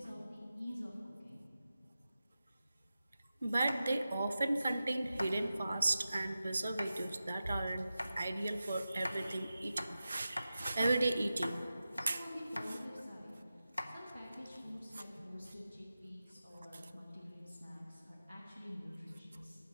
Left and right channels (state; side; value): inverted; both; correlation -0.93